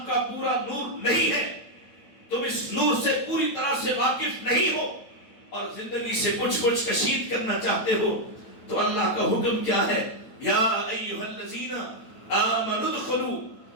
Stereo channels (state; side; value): late; right; 9.1 ms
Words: کا پورا نور نہیں ہے، تم اس نور سے پوری طرح سے واقف نہیں ہو اور زندگی سے کچھ کشید کرنا چاہتے ہو، تو اللہ کا حکم کیا ہے؟ یا ایھا الذین آمنوا ادخلوا